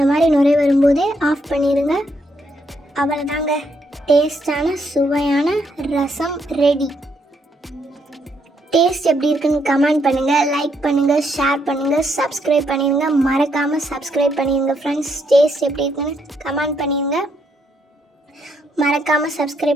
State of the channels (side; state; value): both; normal; correlation 0.75